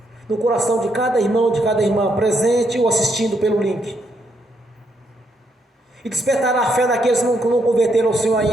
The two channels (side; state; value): both; normal; correlation 0.76